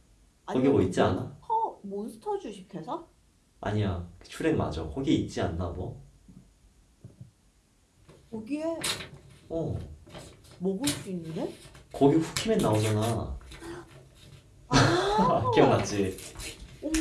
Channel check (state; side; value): identical; both; correlation 1.00